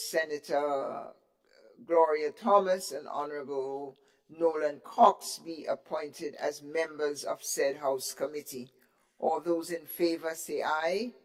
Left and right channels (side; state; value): both; identical; correlation 1.00